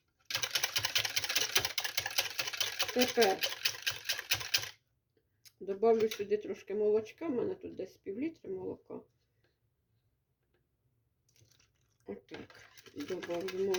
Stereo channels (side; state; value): both; identical; correlation 1.00